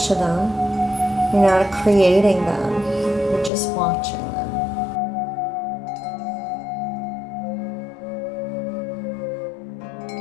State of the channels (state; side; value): drops out; right; at 3.5 s